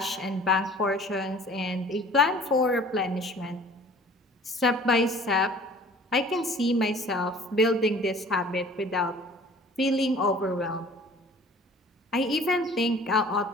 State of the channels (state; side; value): normal; both; correlation 0.49